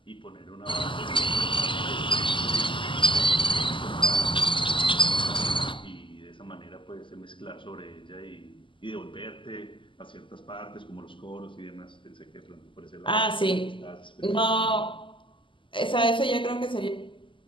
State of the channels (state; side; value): late; right; 0.25 ms